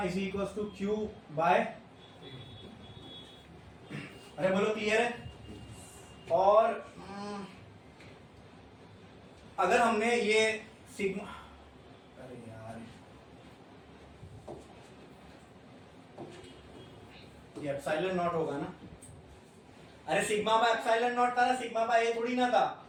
is equal to Q by, अरे बोलो क्लियर है? और अगर हमने ये सिग्मा, अरे यार ये एप्सिलॉन नॉट होगा ना, अरे सिग्मा बाय एप्सिलॉन नॉट था ना, सिग्मा बाय ए थोड़ी ना था।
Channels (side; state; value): both; identical; correlation 1.00